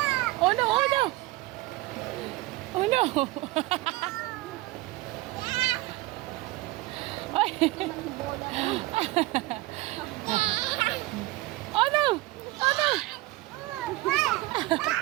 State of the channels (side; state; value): left; quieter; 19.5 dB